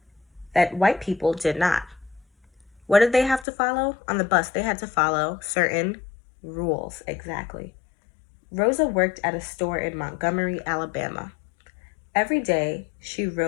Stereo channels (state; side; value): drops out; right; at 3.5 s